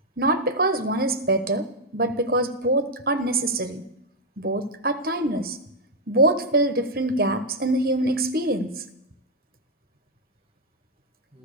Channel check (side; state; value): both; normal; correlation 0.01